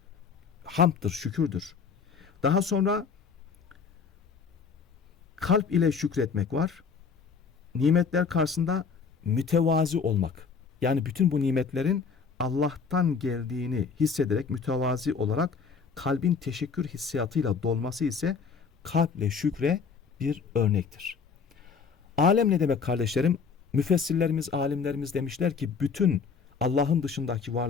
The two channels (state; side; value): quieter; right; 5.6 dB